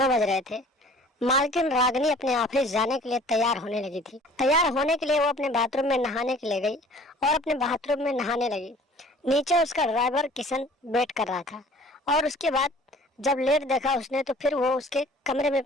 बज रहे थे। मालकिन रागिनी अपने ऑफिस जाने के लिए तैयार होने लगी थी। तैयार होने के लिए वो अपने बाथरूम में नहाने के लिए गई और अपने बाथरूम में नहाने लगी। नीचे उसका ड्राइवर किशन वेट कर रहा था और उसके बाद जब लेट देखा उसने तो फिर वो उसके कमरे में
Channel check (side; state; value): both; normal; correlation 0.50